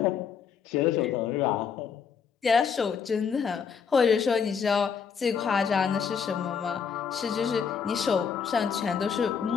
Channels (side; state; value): right; quieter; 6.6 dB